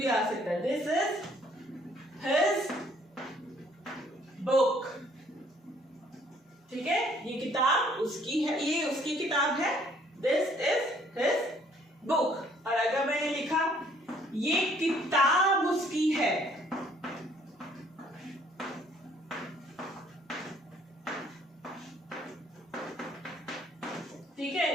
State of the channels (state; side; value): normal; both; correlation 0.61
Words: आ सकता है। This is his book. ठीक है, ये किताब उसकी है, ये उसकी किताब है। This is his book. और अगर मैंने लिखा ये किताब उसकी है, ठीक